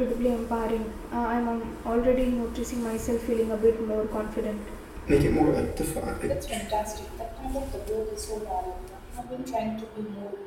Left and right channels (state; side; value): identical; both; correlation 1.00